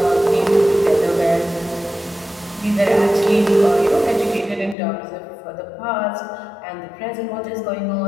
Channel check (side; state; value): right; drops out; at 4.8 s